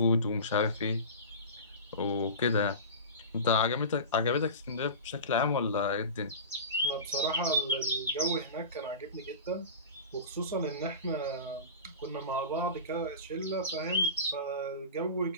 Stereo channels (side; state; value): both; inverted; correlation -0.31